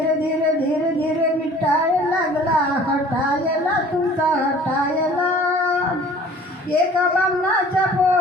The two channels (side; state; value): both; normal; correlation 0.49